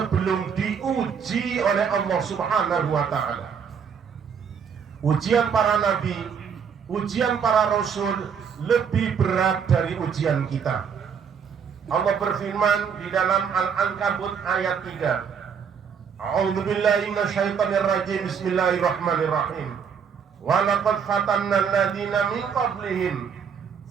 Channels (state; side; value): quieter; left; 6.9 dB